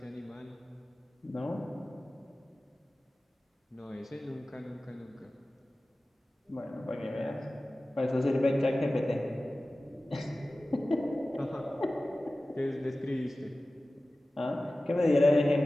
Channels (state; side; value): normal; both; correlation 0.96